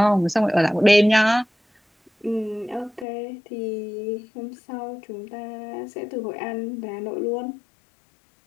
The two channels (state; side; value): drops out; right; at 3.1 s